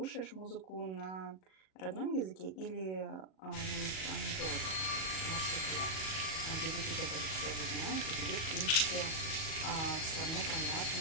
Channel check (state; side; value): late; right; 37 ms